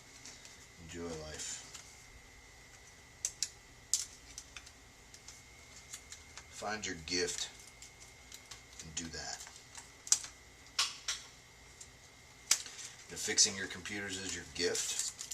Enjoy life. Find your gift and do that. If fixing your computers is your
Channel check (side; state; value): both; identical; correlation 1.00